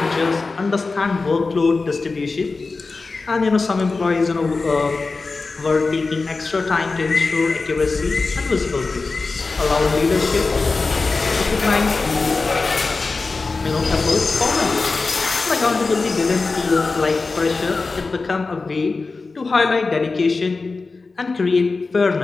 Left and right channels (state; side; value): quieter; right; 3.9 dB